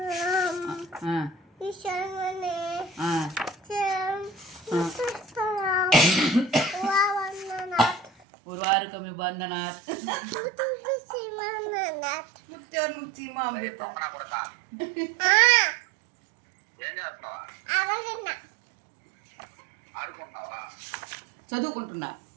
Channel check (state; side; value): drops out; left; at 8.1 s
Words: ఉర్వారుకమి బంధనాత్ ముక్తి మా అమృత చదువుకుంటున్నా